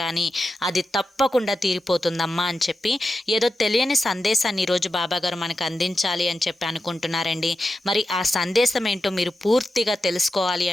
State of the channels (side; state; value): both; normal; correlation 0.90